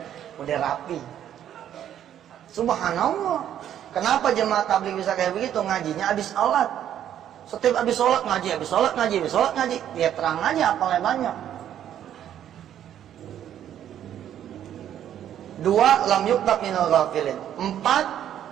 Udah rapi. Subhanallah. Kenapa jemaah tabligh bisa kayak begitu? Ngajinya habis sholat. Setiap habis sholat ngaji, habis sholat ngaji, habis sholat ngaji. Dia terang aja apalnya banyak. 2, lam yuktab minal ghafilin. 4,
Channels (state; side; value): quieter; left; 10.5 dB